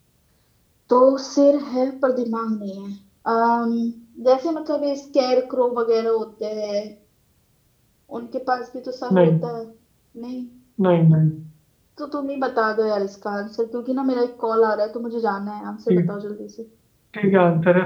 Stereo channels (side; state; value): both; identical; correlation 1.00